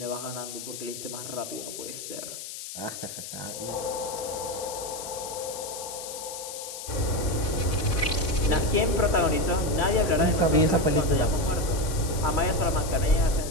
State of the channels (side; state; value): left; noise; hiss, 9 dB below the sound